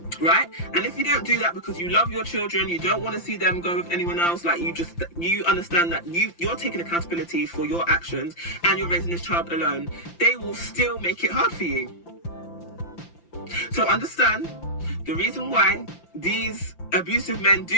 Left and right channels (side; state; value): right; late; 5.9 ms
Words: Right? And if you don't do that because you love your children, you don't want to see them go with anyone else, like you understand that you're taking accountability for your actions and you're raising this child alone, they will still make it hard for you. So understand, the reason why these abusive men